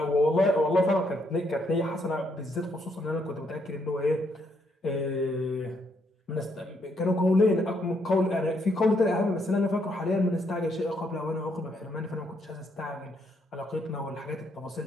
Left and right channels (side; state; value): both; normal; correlation 0.74